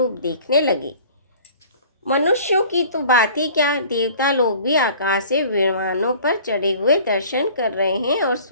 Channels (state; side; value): inverted; both; correlation -0.48